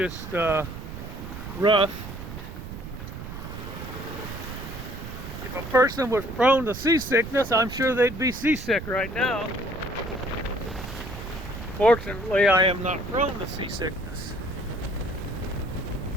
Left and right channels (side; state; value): right; noise; rumble, 10 dB below the sound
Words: rough. If a person was prone to seasickness, I'm sure they'd be seasick right now. Fortunately, I am not prone to seasickness.